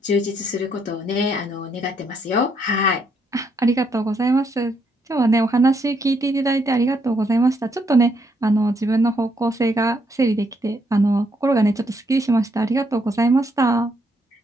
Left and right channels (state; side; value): normal; both; correlation 0.74